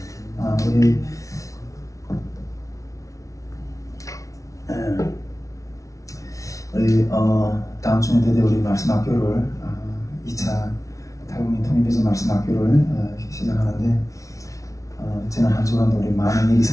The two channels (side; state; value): right; late; 0.16 ms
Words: 우리 다음 주에 드디어 우리 말씀 학교를 2차 탈북민 통일비전 말씀 학교를 시작하는데 지난 한 주간도 우리 많은 일이